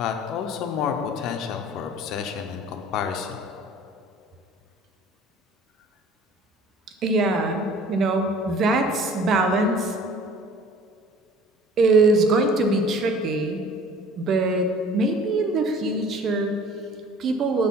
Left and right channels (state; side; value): normal; both; correlation 0.48